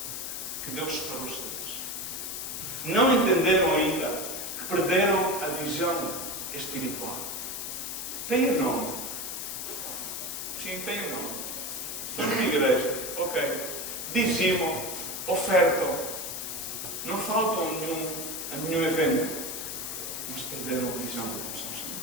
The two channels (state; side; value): noise; left; hiss, 5 dB below the sound